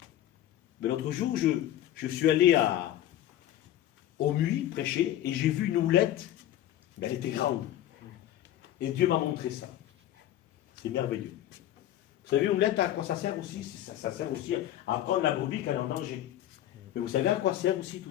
Mais l'autre jour, je suis allé au Muy prêcher et j'ai vu une houlette, mais elle était grande. Et Dieu m'a montré ça. C'est merveilleux. Vous savez, une houlette, à quoi ça sert aussi? Ça sert aussi à prendre la brebis quand elle est en danger. Mais vous savez à quoi sert aussi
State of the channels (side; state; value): right; quieter; 12.6 dB